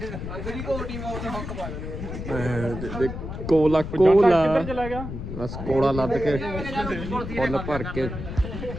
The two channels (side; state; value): left; noise; rumble, 7 dB below the sound